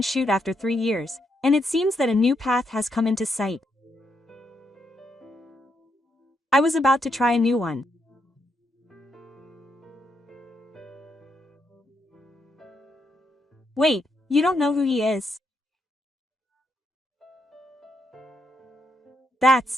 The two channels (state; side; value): normal; both; correlation 0.79